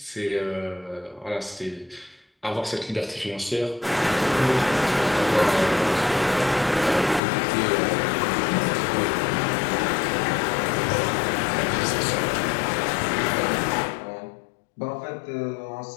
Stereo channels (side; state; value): right; drops out; at 7.2 s